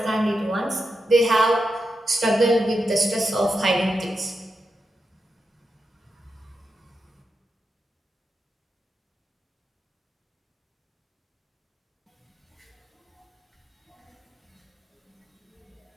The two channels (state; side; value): normal; both; correlation 0.87